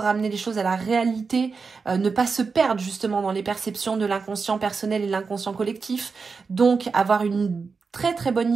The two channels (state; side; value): quieter; left; 4.9 dB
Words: les choses à la réalité, ne pas se perdre justement dans les perceptions de l'inconscient personnel et l'inconscient collectif. Donc avoir une très très